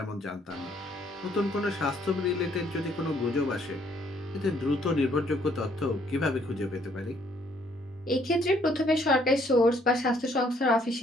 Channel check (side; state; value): both; normal; correlation 0.66